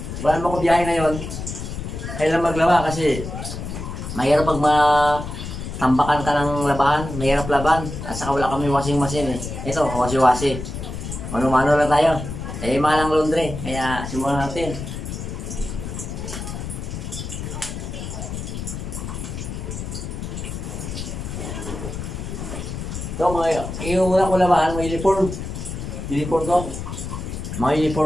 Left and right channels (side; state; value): left; noise; rumble, 7 dB below the sound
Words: wala naman ko biyahe ngayon. Kailangan maglaba kasi mahirap pag tambakan ka ng labahan. Mahirap laban. At saka wala kami washing machine eh. Ito, wasi-wasi. Mano-mano lang tayo. Eh, malang laundry. Kaya simulan natin. Ito, yung una ko labahan, may uniform. Uniform ko. Mga